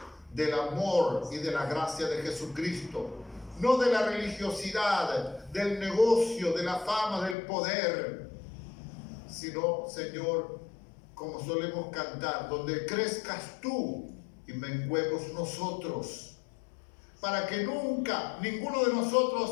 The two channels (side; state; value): right; drops out; at 7.4 s